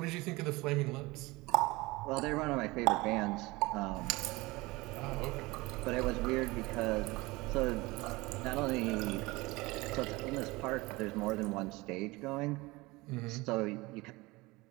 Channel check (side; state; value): left; quieter; 22.2 dB